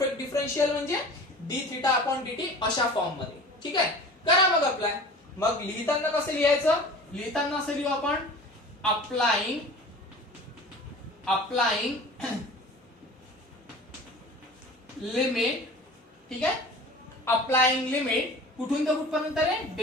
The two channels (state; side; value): normal; both; correlation 0.40